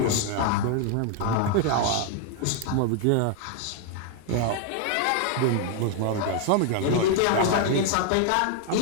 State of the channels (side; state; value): both; different; correlation 0.00